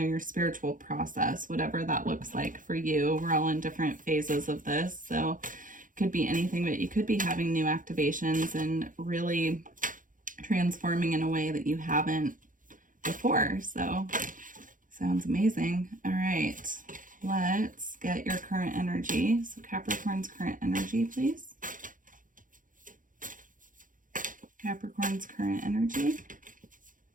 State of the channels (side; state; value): left; late; 0.39 ms